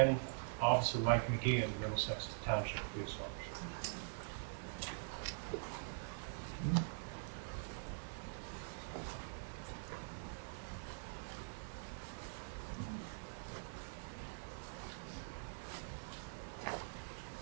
Officer Mike McGee and Middlesex Township Police Officer.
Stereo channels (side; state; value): left; silent; digital silence